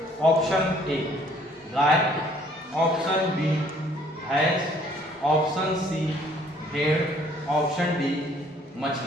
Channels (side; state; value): both; normal; correlation 0.60